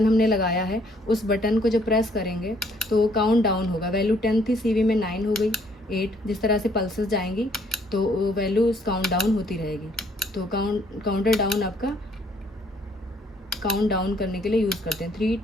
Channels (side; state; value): both; normal; correlation 0.65